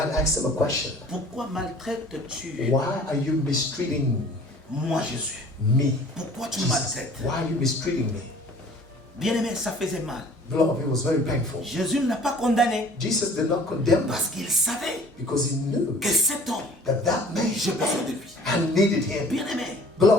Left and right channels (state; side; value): normal; both; correlation 0.50